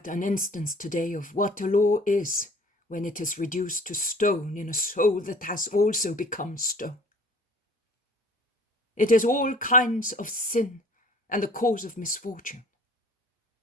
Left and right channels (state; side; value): normal; both; correlation 0.50